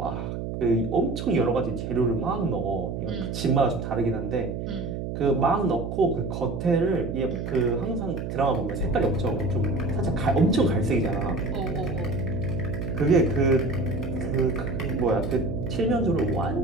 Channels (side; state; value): right; noise; hum, 5 dB below the sound